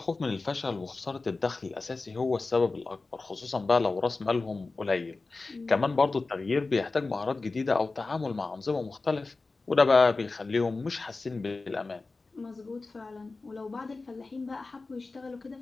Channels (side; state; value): right; quieter; 3.7 dB